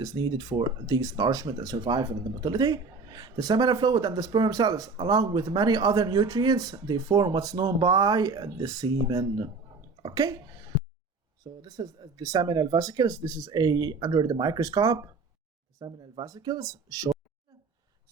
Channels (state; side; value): quieter; left; 4.2 dB